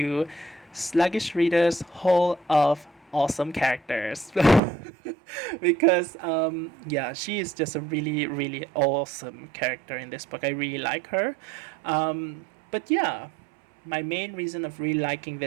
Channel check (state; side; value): drops out; left; at 4.6 s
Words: Sluggish Reader's Hall of Awesome Characters. Because, she is just a really, really awesome character in this book. I really like her. But yeah, my main reason of really liking